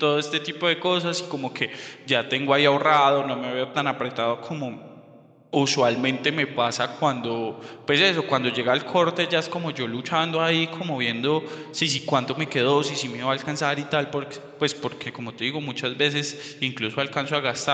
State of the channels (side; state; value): both; identical; correlation 1.00